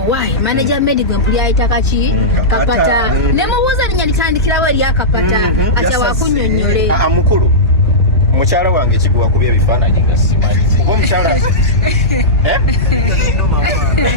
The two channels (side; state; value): both; normal; correlation -0.14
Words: waayi manager Medi gwe mpuli ayita kaki kapata ne mubuuza linnya litandikirawo eri akapata atya wakunyonnyole mukulu mukyala wange kiguwa kubya ebifaananyi nga simanyi oba omukyala